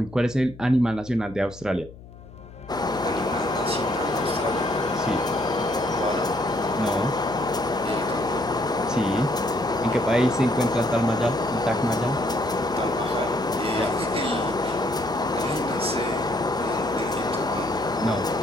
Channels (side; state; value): left; noise; hum, 18 dB below the sound